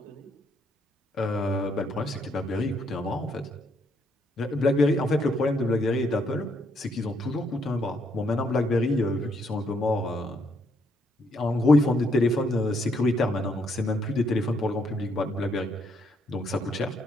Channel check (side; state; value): both; normal; correlation 0.73